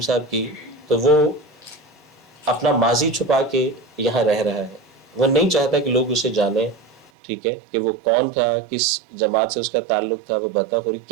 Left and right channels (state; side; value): drops out; left; at 7.1 s